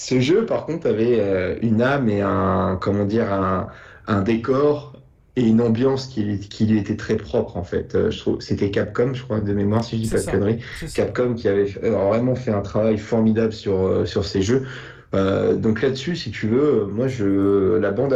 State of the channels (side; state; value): both; identical; correlation 1.00